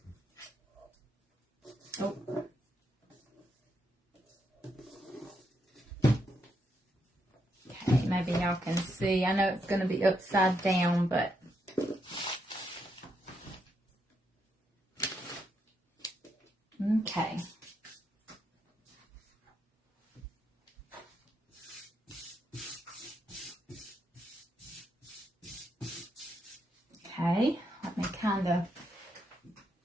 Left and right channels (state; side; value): normal; both; correlation 0.79